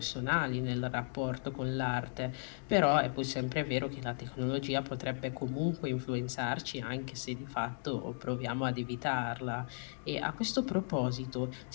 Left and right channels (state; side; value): silent; right; 54 dB below the other